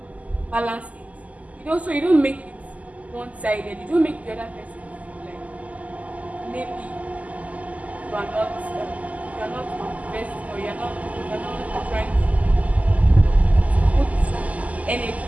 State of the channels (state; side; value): late; left; 0.073 ms